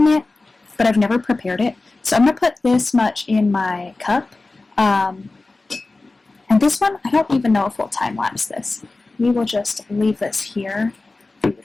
it, but I've never prepared it. So I'm going to put this much in my cup. And this one, I don't even know if we'll time-lapse this. We will just leave this here for you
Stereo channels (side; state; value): right; quieter; 3.3 dB